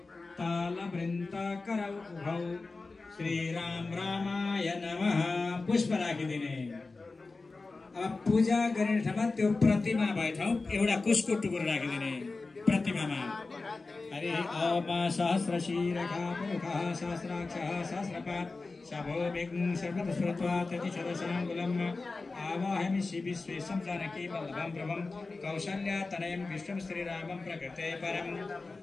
तालवृन्दाकरौ उभौ श्रीराम रामाय नमः। पुष्प राखिदिने। अब पूजा गर्ने ठाउँमा त्यो प्रतिमा भए ठाउँ एउटा कुशको टुक्रो राखिदिने प्रतिमामा। हरि ओम सहस्रशीरखा पुरुखः सहस्राक्षः सहस्रपात् शभो विघ्नं सर्वतस्वरत्वा ततिशतशराङ्गुलम् आवाहयामि विश्वेशं जानकी वल्लभं प्रभं कौशल्यातनयं विष्णुं श्रीरामं प्रकृते परं।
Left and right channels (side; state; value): right; quieter; 3.7 dB